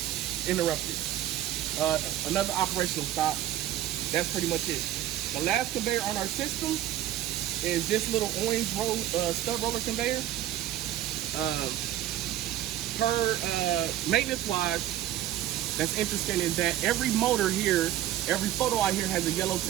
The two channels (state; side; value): quieter; left; 12.8 dB